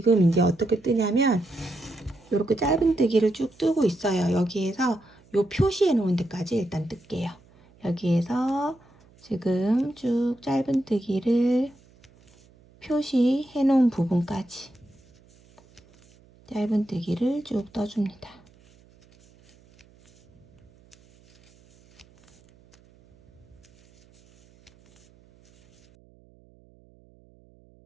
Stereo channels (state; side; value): noise; right; hum, 29 dB below the sound